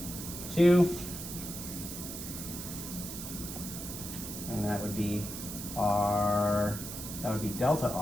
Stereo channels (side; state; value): right; noise; hiss, 8 dB below the sound